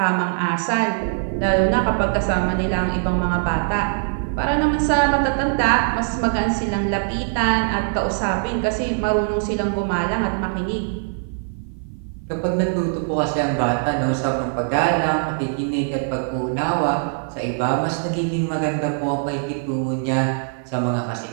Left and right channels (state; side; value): silent; left; 55 dB below the other